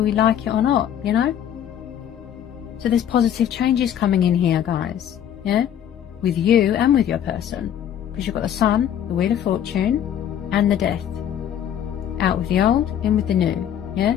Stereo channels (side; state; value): right; quieter; 9.9 dB